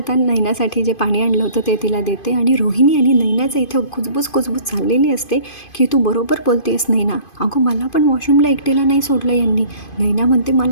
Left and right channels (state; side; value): late; right; 2.5 ms